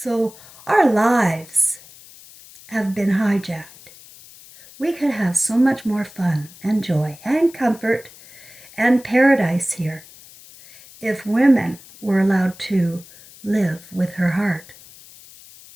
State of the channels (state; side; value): noise; left; hiss, 21 dB below the sound